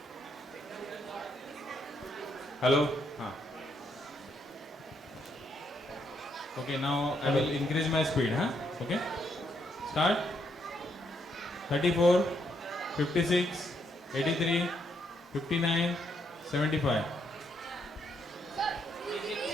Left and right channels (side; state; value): both; normal; correlation 0.75